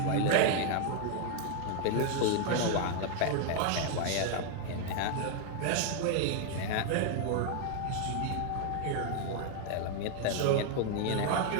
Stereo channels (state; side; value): different; both; correlation 0.00